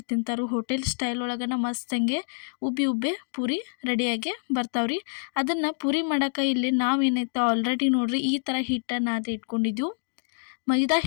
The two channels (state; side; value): silent; right; digital silence